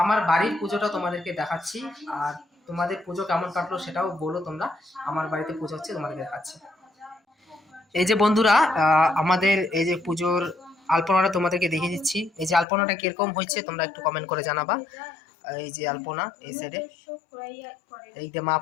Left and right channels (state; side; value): drops out; right; at 12.7 s